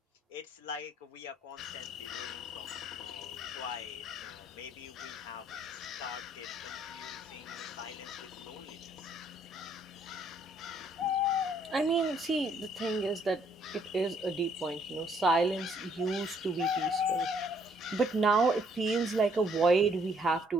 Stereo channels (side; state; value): both; normal; correlation 0.66